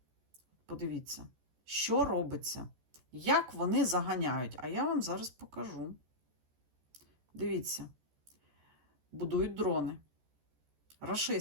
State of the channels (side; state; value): left; late; 14 ms